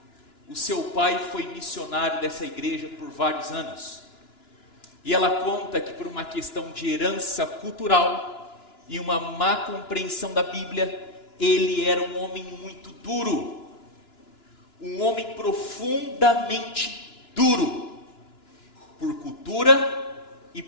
O seu pai foi missionário dessa igreja por vários anos. E ela conta que por uma questão de herança cultural e uma má compreensão da Bíblia, ele era um homem muito duro. Um homem profundamente duro. Por cultura e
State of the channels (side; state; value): right; late; 2.9 ms